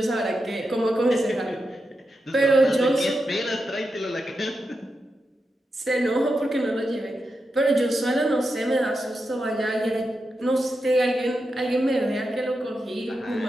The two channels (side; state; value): both; normal; correlation 0.88